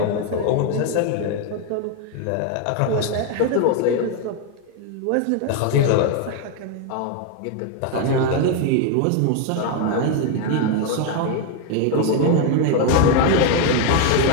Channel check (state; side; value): different; both; correlation 0.01